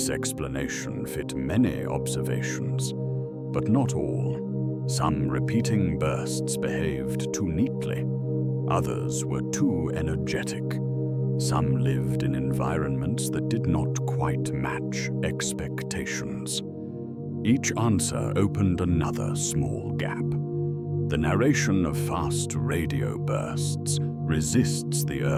explanation fit many observations, but not all. Some repeating bursts behaved too neatly. Others were too energetic. Some lived in environments that did not quite match expectations. Each answer opened another small gap. The narration of fast radio bursts resists the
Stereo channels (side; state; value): both; identical; correlation 1.00